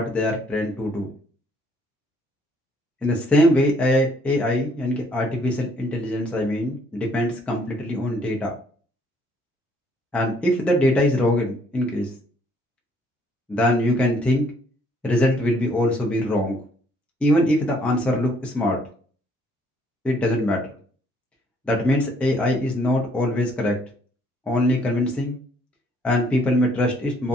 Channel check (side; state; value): both; normal; correlation 0.64